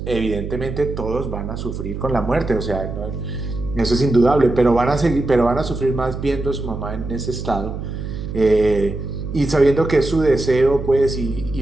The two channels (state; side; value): noise; right; hum, 7 dB below the sound